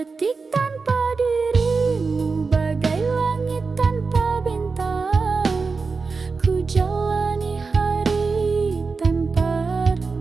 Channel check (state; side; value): quieter; left; 4.5 dB